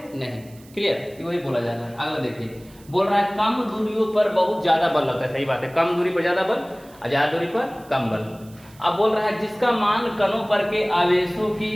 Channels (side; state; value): right; noise; hiss, 26 dB below the sound